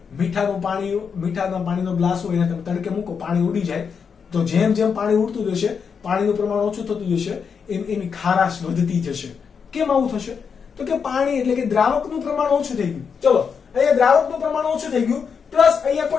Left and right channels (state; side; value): quieter; right; 6.3 dB